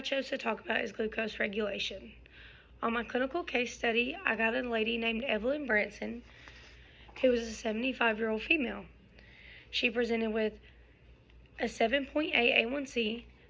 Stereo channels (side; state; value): both; identical; correlation 1.00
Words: chose to talk about is glucose regulation. On my clinical case study, I got a lady named Evelyn Branson, who was a 75-year-old female. She presented with a 7.8 A1C,